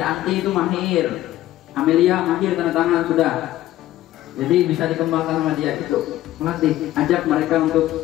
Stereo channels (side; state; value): right; quieter; 14.5 dB